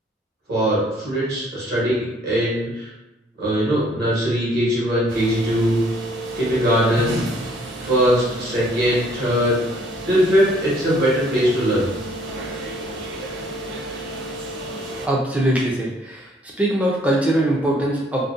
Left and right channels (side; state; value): both; normal; correlation 0.61